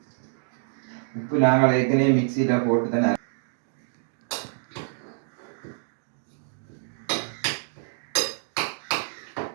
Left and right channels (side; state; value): left; silent; digital silence